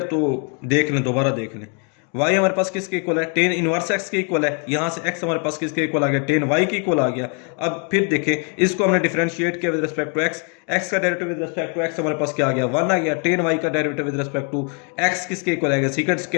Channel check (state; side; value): quieter; right; 38.8 dB